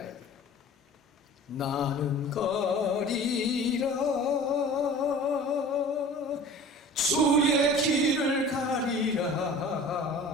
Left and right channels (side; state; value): both; normal; correlation 0.42